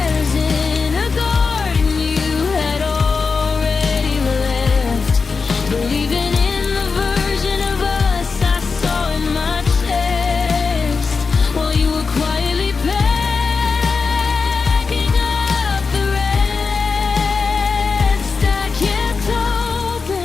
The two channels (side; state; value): right; quieter; 4.8 dB